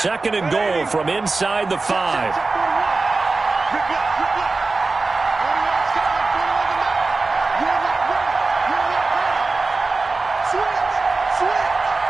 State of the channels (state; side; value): quieter; left; 3.7 dB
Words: and goal from inside the 5.